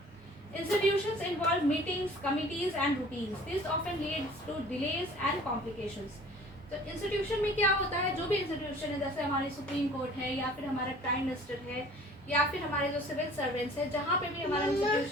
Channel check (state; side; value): normal; both; correlation 0.48